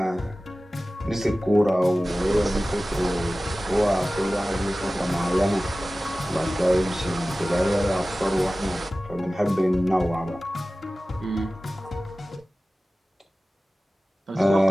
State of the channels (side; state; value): both; normal; correlation 0.96